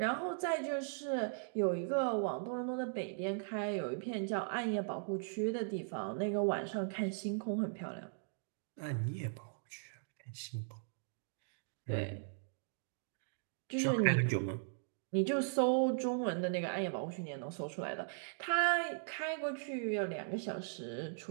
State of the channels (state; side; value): silent; left; digital silence